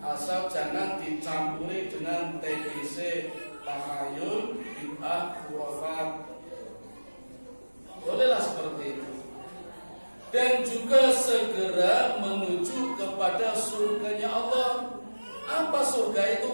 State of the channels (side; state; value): both; inverted; correlation -1.00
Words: jangan dicampuri dengan TBC, tahayul, bid'ah, khurafat. Bolehlah seperti itu. Dan juga segera menuju kepada surganya Allah. Apa surga itu?